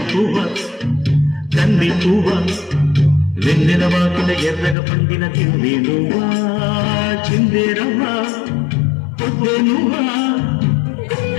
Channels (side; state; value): right; drops out; at 4.8 s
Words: పువ్వ వెన్నెల వాకిన ఎర్రగ పండిన తింది నువ్వా చిందేరవ్వా పొద్దు నువ్వా